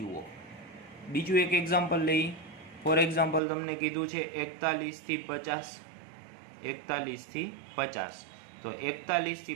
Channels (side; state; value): left; drops out; at 3.4 s